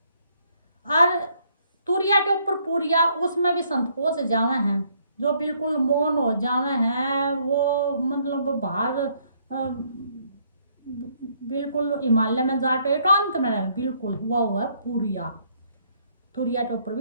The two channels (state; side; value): inverted; both; correlation -0.69